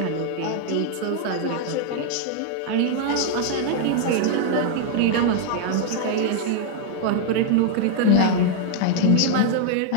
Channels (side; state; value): both; different; correlation 0.00